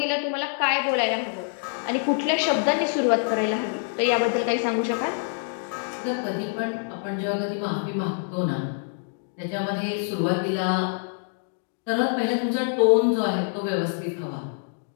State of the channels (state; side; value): silent; right; 56 dB below the other